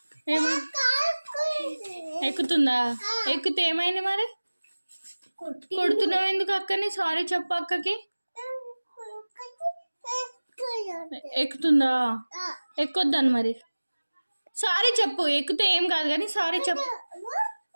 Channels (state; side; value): inverted; both; correlation -1.00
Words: ఎక్కుతుందా? ఎక్కితే ఏమైంది మరి? కొడుతున్నావు ఎందుకు అక్కని? సారీ చెప్పు అక్కకి. ఎక్కుతుందా? ఎక్కొద్దాను మరి. సారీ చెప్పు. ఎక్కితే ఏం కాదు కానీ సారీ చెప్పు.